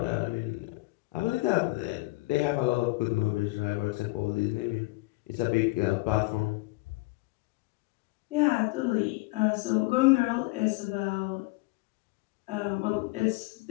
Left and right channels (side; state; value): right; quieter; 23.0 dB